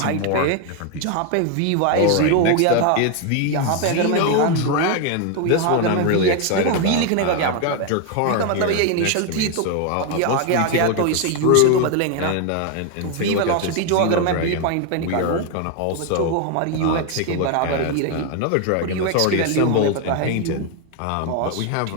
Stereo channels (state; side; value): different; both; correlation 0.01